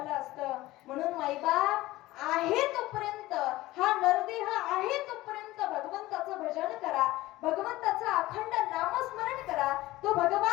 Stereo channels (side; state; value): right; quieter; 17.7 dB